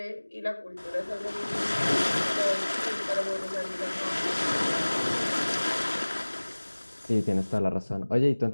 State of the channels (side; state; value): both; inverted; correlation -1.00